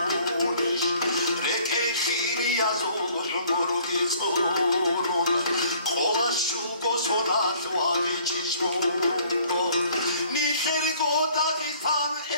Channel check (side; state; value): both; inverted; correlation -0.57